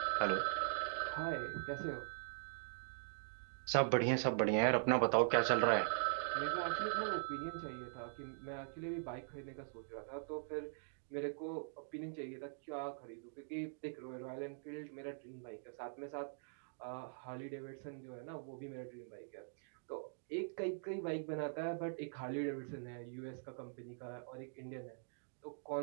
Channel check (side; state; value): left; silent; digital silence